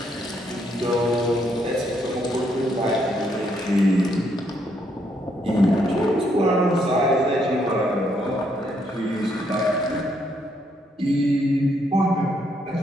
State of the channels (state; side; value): normal; both; correlation 0.74